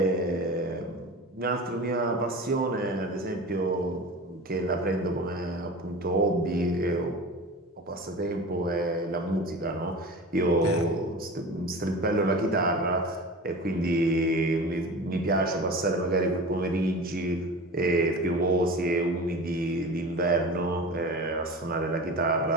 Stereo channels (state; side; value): normal; both; correlation 0.34